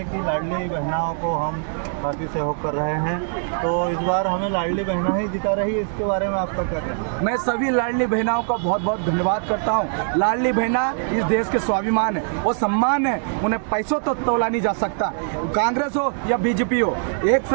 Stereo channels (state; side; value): silent; left; digital silence